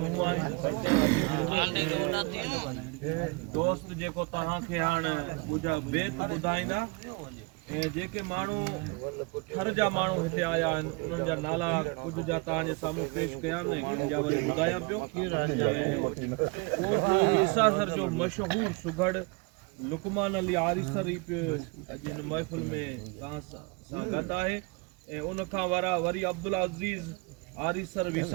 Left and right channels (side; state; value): left; quieter; 28.8 dB